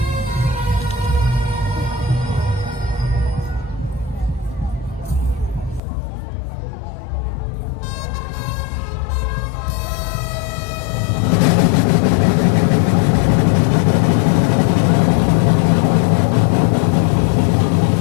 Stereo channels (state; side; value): drops out; right; at 5.8 s